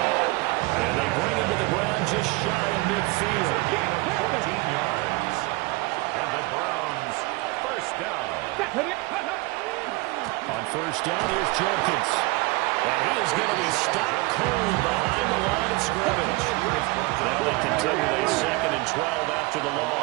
And they bring him to the ground just shy of midfield. A gain of 14 yards. And the Browns, first down. On first down, here's Jenkins. And he is going to be stopped cold behind the line of scrimmage. Now they continue a 2nd and 12 after the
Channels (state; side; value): quieter; left; 23.8 dB